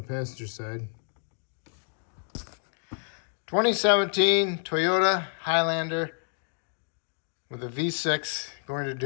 passenger side. 2017 Toyota Highlander with a V6, going to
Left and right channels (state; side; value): silent; right; digital silence